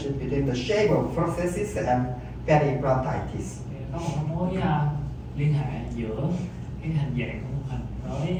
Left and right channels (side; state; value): both; identical; correlation 1.00